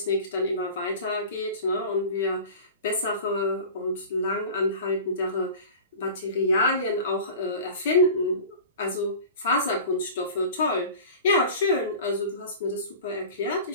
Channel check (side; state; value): both; inverted; correlation -0.37